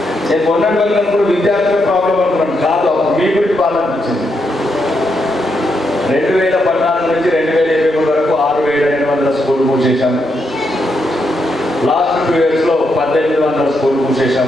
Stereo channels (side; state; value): both; normal; correlation 0.81